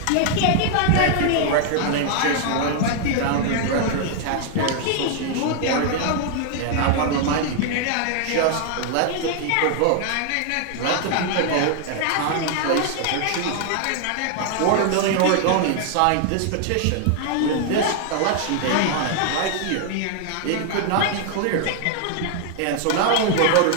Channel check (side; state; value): both; different; correlation 0.00